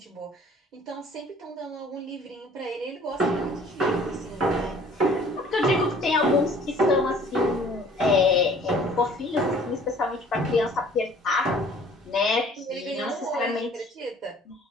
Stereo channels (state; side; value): normal; both; correlation 0.52